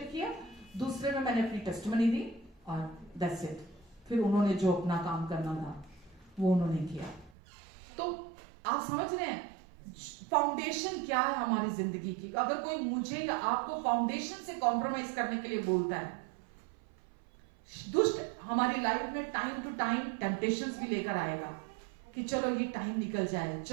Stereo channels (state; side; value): drops out; left; at 7.4 s